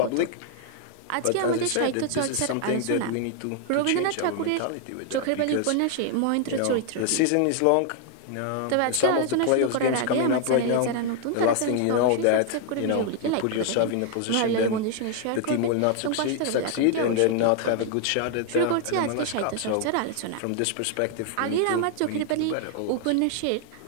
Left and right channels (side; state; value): both; different; correlation 0.00